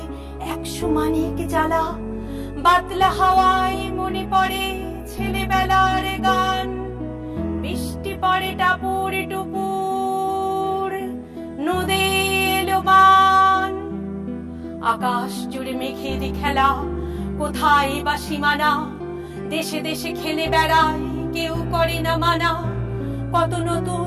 100 মানিক জ্বালা। বাদলা হাওয়ায় মনে পড়ে ছেলেবেলার গান, বৃষ্টি পড়ে টাপুর টুপুর, নদে এলো বান। আকাশ জুড়ে মেঘের খেলা, কোথায় বা সীমানা, দেশে দেশে খেলে বেড়ায় কেউ করে না মানা। কত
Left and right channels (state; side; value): identical; both; correlation 1.00